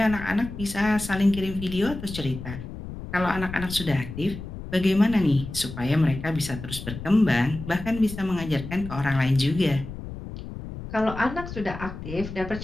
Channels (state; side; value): noise; left; rumble, 10 dB below the sound